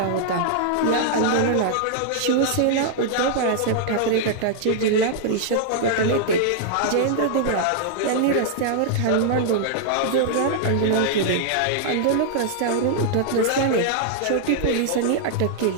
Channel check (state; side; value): different; both; correlation -0.01